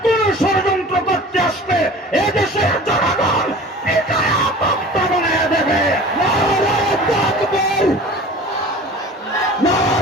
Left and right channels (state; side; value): normal; both; correlation 0.41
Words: কোন ষড়যন্ত্র করতে আসবে এদেশের জনগণ দেবে।